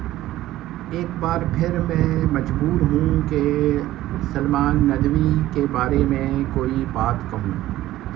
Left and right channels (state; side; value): quieter; left; 15.0 dB